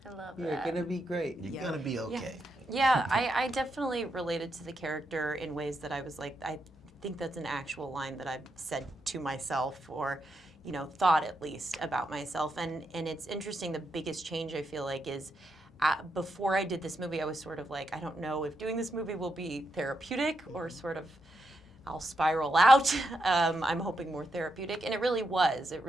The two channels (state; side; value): normal; both; correlation 0.83